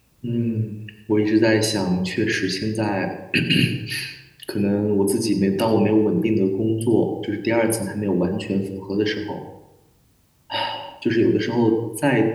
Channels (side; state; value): both; identical; correlation 1.00